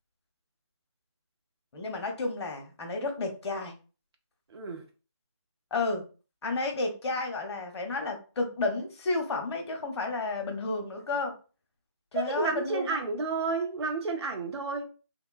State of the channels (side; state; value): both; inverted; correlation -0.32